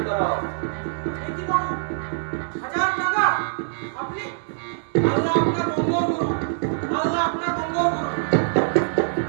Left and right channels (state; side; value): silent; left; digital silence